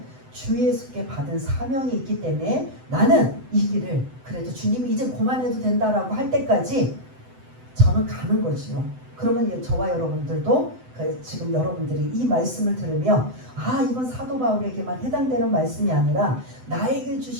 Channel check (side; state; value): left; late; 7.9 ms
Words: 주 예수께 받은 사명이 있기 때문에 나는 이 길을 그래도 주님이 이제 그만해도 된다라고 할 때까지 저는 가는 거지요. 그러면 저와 여러분들도 지금 여러분들이 이 말씀을 들으며 이건 사도 바울에게만 해당되는 말씀이 아니라 나에게